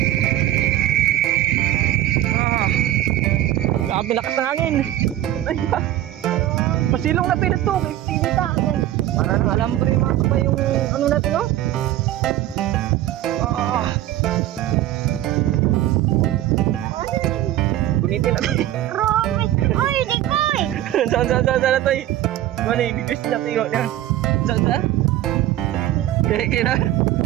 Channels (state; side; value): quieter; left; 13.7 dB